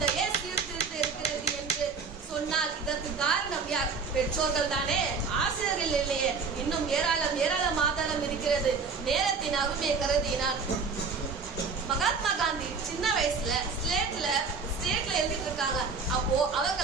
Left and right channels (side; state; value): left; quieter; 4.9 dB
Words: சீர்திருத்த இருக்கிறது என்று சொன்னால் இதற்கு காரணம் யார்? பெற்றோர்கள் தானே, ஆசிரியர்கள் இல்லையே. இன்னும் ஏராளம் ஆதாரம் இருக்கிறது. நேரத்தின் அருமையை கருதினார். மகாத்மா காந்தி சின்ன வயசுல ஸ்லேட்ல எழுதிட்டு இருக்காங்க. அப்போ